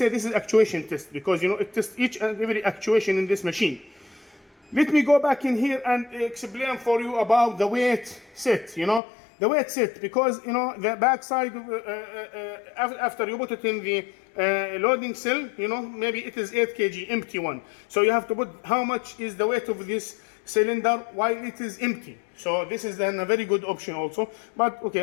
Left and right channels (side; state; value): right; drops out; at 9.0 s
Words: this is actuation test, because, you know, it tests each and every actuation in this machine. Let me go back in here and explain for you about the weight set, you know. The weight set, because, you know, the backside, after you put it in the loading cell, you know, maybe it is 8 kg, empty one. So you have to put how much is the weight of this cylinder while it is empty. So this is then a very good option also. But